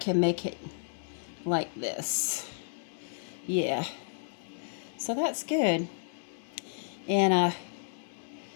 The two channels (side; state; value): right; silent; 56 dB below the other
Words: make it like this. Yeah. So that's good. And,